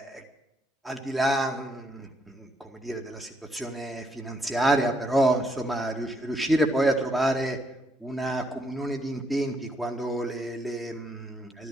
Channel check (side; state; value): both; normal; correlation 0.73